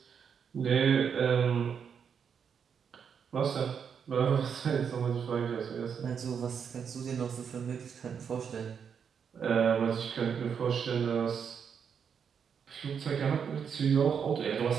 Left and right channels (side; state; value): left; quieter; 7.1 dB